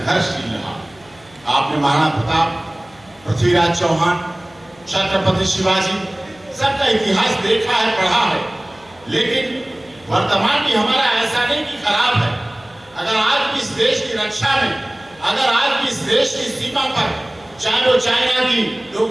रहा। आपने महाराणा प्रताप, पृथ्वीराज चौहान, छत्रपति शिवाजी, सबका इतिहास देखा है, पढ़ा है, लेकिन वर्तमान भी हमारा ऐसा नहीं कि खराब है। अगर आज भी इस देश की रक्षा में, अगर आज भी इस देश की सीमा पर, चाहे वो चाइना की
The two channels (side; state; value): left; noise; hum, 27 dB below the sound